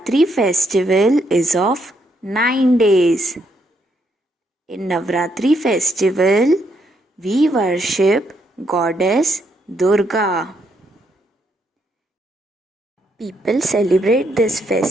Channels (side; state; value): both; normal; correlation 0.75